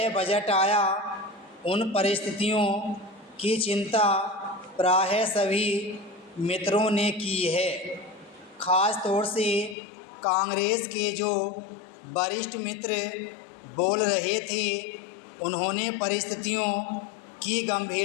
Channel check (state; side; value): drops out; right; at 9.8 s